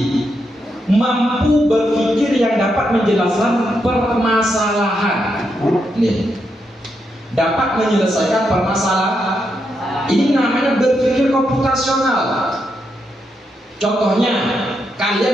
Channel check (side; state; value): both; normal; correlation 0.82